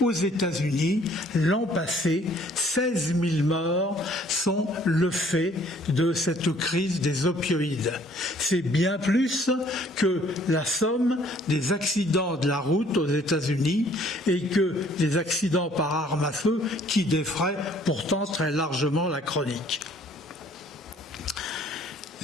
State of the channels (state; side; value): normal; both; correlation 0.59